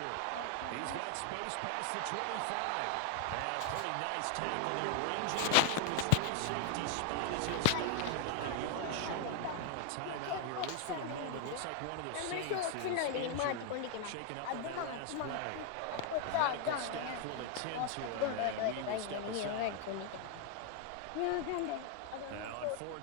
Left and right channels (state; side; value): different; both; correlation 0.00